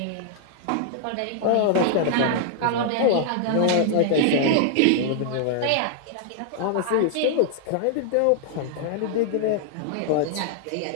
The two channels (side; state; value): both; different; correlation -0.01